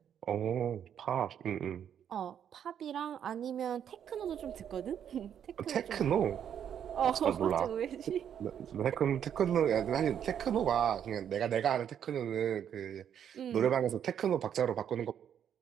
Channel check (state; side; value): quieter; left; 9.0 dB